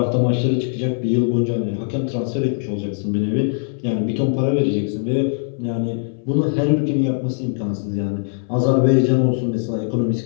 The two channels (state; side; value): silent; right; 65 dB below the other